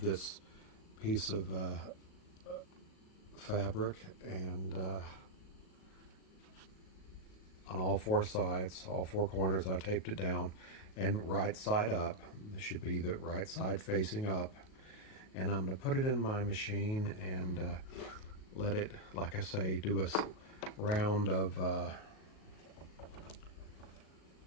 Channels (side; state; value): right; late; 37 ms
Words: piece of fabric, and on all four sides, all four corners, I taped it down, and right side up. This should be the right side facing up. And I'm going to put it in my machine and let it, like I say, do a round of, a